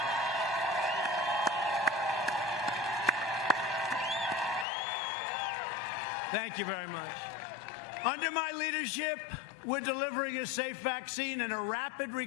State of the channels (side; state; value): right; drops out; at 4.7 s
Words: Thank you very much. Under my leadership, we're delivering a safe vaccine and a rapid